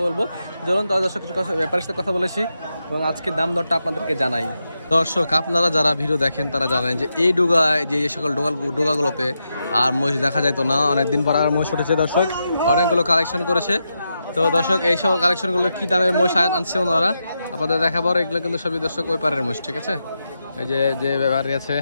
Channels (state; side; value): inverted; both; correlation -0.86